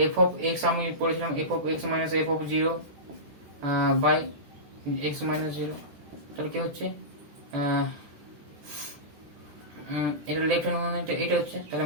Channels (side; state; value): left; late; 13 ms